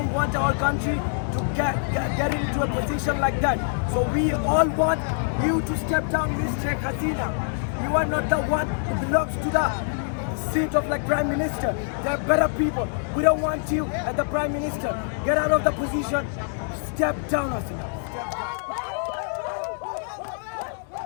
want our country to get into a position like that. So we all want you to step down, Miss Sheikh Hasina. You are not the one who belongs to the seat of like Prime Minister. There are better people. We don't want you as the Prime Minister. Get out of the position. Step down, Hasina.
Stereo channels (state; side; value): silent; right; digital silence